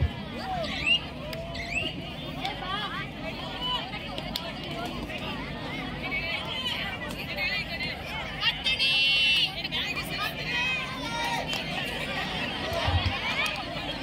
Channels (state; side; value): identical; both; correlation 1.00